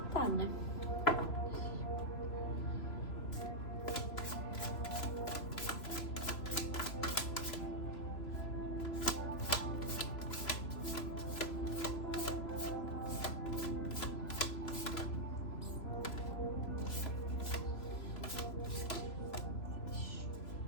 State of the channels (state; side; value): late; right; 3.0 ms